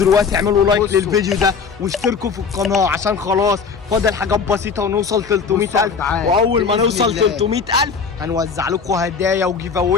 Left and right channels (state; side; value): quieter; right; 5.6 dB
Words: اعملوا لايك للفيديو ده واشتركوا في القناه عشان خلاص فاضل حاجات بسيطه ونوصل 300,000. واول ما نوصل 300,000 هنوزع لكم هدايا وجيف